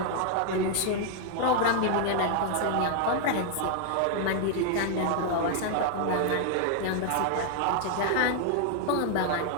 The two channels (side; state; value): both; different; correlation 0.00